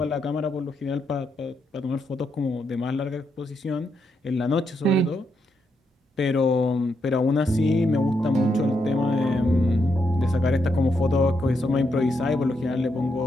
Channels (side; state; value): both; normal; correlation 0.81